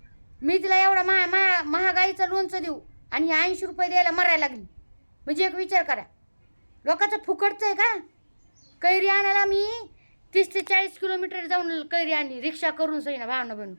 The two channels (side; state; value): both; inverted; correlation -1.00